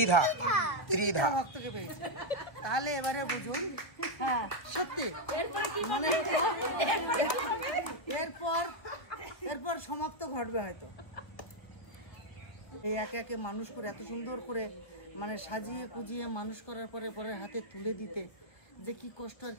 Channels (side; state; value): right; late; 1.2 ms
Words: ত্রিধা ভক্তকে পেয়েছে। তাহলে এবারে বুঝুন, হ্যাঁ সত্যি মানে এরপর সমাপ্ত ঘটবে হয়তো। এই একে একে মানুষ করে, এত সুন্দর করে মানে সাজিয়ে কুজিয়ে মানুষ করার পরে পরের হাতে তুলে দিতে যে কি কষ্ট আর